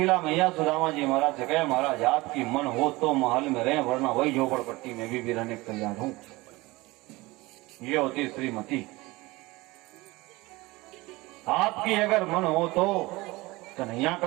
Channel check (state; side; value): quieter; left; 21.5 dB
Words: मैया सुदामा जी महाराज से, कहे महाराज आपकी मन हो तो महल में रहे, वरना वही झोपड़पट्टी में भी रहने को तैयार हूं। ये होती श्रीमती। आपकी अगर मन हो तो कन्हैया